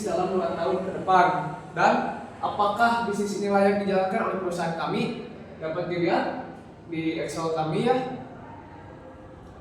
dalam 2 tahun ke depan? Dan apakah bisnis ini layak dijalankan oleh perusahaan kami? Dapat dilihat di Excel kami ya.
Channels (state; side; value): identical; both; correlation 1.00